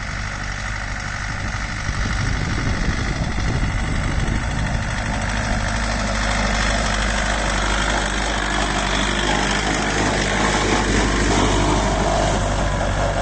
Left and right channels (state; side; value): identical; both; correlation 1.00